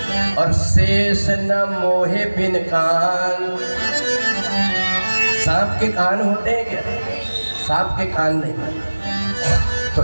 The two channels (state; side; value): inverted; both; correlation -1.00